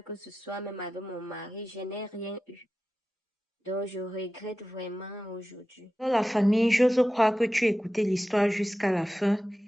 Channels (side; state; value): both; normal; correlation 0.93